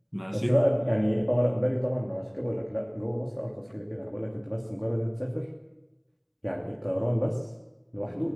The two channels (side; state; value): both; identical; correlation 1.00